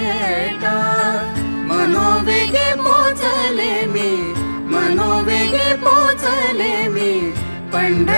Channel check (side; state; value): both; inverted; correlation -1.00